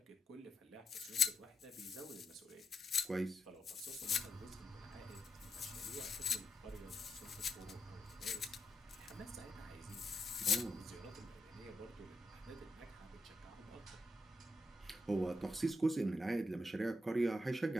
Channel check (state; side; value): normal; both; correlation 0.82